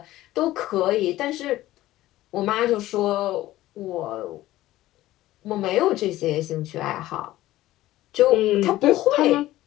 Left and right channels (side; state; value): right; quieter; 15.7 dB